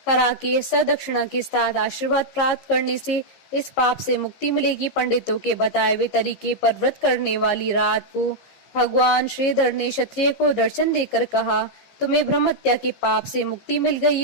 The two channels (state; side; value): late; right; 15 ms